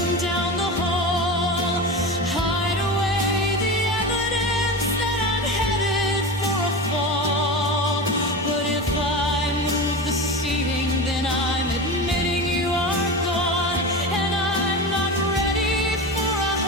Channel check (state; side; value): normal; both; correlation 0.25